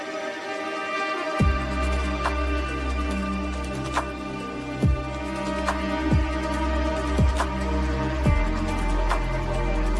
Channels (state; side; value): identical; both; correlation 1.00